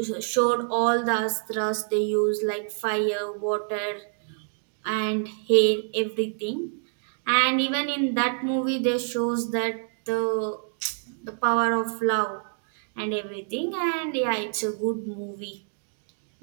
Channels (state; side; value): silent; left; digital silence